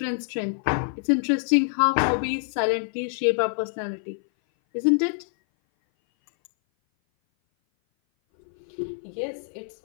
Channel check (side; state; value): right; silent; 58 dB below the other